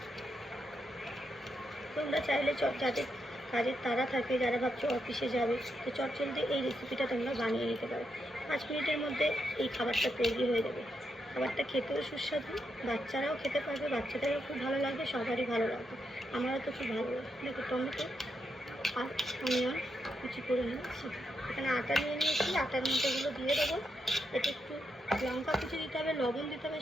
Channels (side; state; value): both; normal; correlation 0.82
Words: তোমরা চাইলে যাদের কাজের তাড়া থাকে, যারা ভাবছো অফিসে যাবে, তো চটজলদি এই রেসিপিটা তোমরা বানিয়ে নিতে পারো। 5 মিনিটের মধ্যে এই খাবারটা তৈরি হয়ে যাবে। খাবারটা খেতেও সুস্বাদু, বাচ্চারাও খেতে পারবে, বাচ্চাদেরও খুব ভালো লাগবে, সবারই ভালো লাগবে, আমারও তো খুব ভালো লাগবে। দেখো, টমেটো আর অনিয়ন কুচি করে নিয়েছি, এখানে আটা নিয়ে নিয়েছি, আটার মধ্যেগুলো দিয়ে দেবো। এতে একটু লঙ্কা কুচি দিতে হবে, লবণ দিতে হবে,